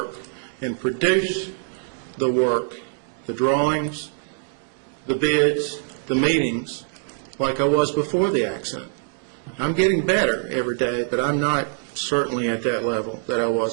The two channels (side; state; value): left; silent; digital silence